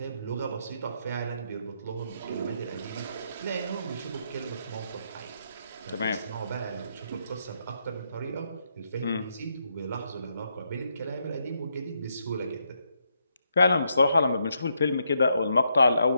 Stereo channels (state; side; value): inverted; both; correlation -0.79